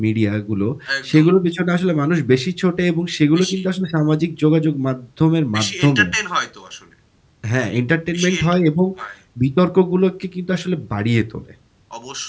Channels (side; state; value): both; identical; correlation 1.00